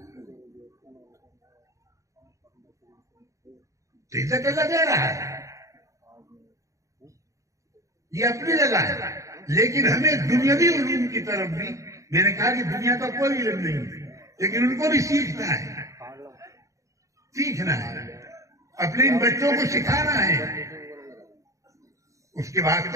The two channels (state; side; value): late; left; 0.15 ms